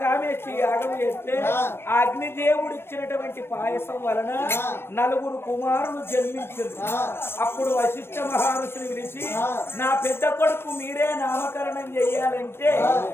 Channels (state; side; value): late; right; 0.12 ms